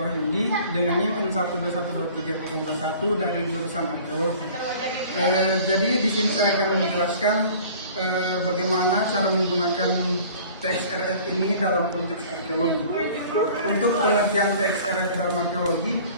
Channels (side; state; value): both; inverted; correlation -0.47